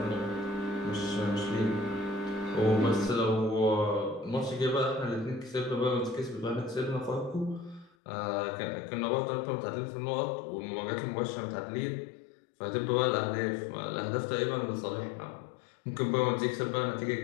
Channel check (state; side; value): drops out; right; at 7.9 s